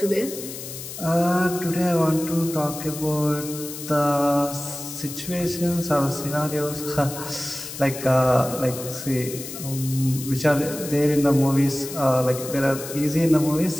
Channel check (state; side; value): noise; left; hiss, 10 dB below the sound